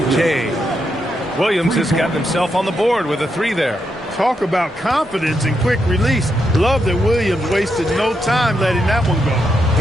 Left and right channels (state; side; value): normal; both; correlation 0.82